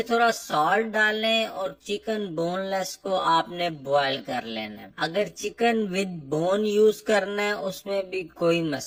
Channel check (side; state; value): both; identical; correlation 1.00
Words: थोड़ा सॉल्ट डालें और चिकन बोनलेस को आपने बॉईल कर लेना है। अगर चिकन विद बोन यूज करना है उसमें भी कोई